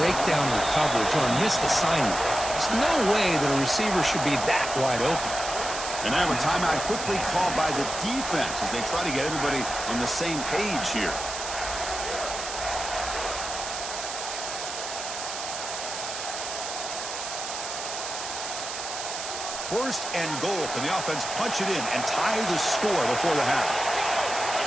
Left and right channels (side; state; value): right; noise; hiss, 6 dB below the sound